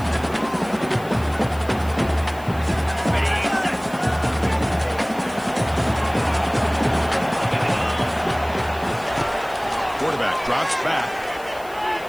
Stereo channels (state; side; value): noise; left; hiss, 22 dB below the sound